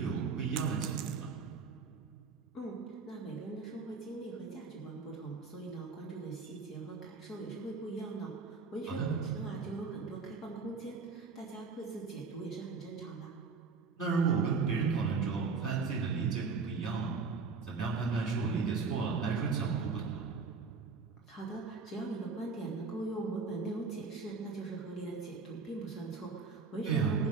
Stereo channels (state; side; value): quieter; left; 4.8 dB